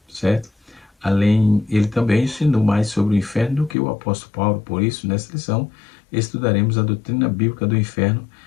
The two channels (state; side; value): drops out; right; at 3.8 s